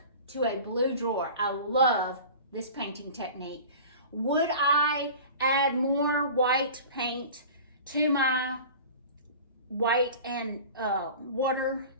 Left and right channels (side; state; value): both; inverted; correlation -0.38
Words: to a blue drawer. I love this painting technique. Would I add more white paint to my white and water